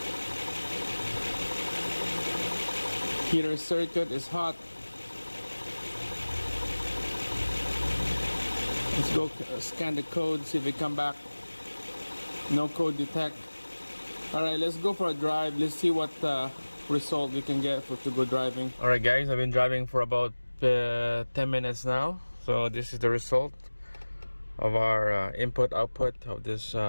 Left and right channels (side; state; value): both; inverted; correlation -1.00